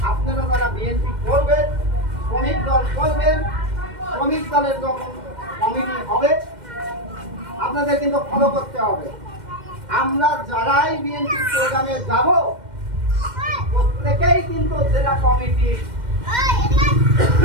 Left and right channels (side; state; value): left; late; 2.1 ms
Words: আপনারা যারা বিএনপি করবেন, শ্রমিক দল করবেন, শ্রমিক দলের যখন কমিটি হবে আপনাদের কিন্তু ফলো করতে হবে। আমরা যারাই বিএনপি প্রোগ্রামে যাব, প্রত্যেকেই কিন্তু জেলা কমিটি